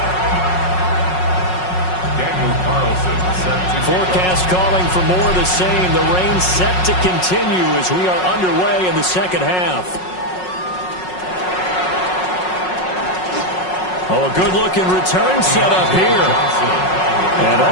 Forecast calling for more of the same. The rain set to continue as we are underway in the second half. Oh, a good-looking return set up here. And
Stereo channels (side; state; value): right; late; 5.5 ms